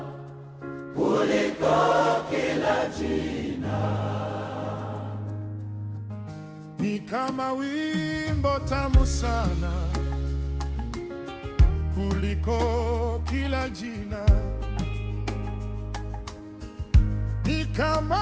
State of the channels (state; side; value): identical; both; correlation 1.00